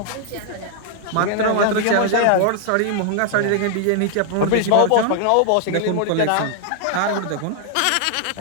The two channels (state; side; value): different; both; correlation 0.00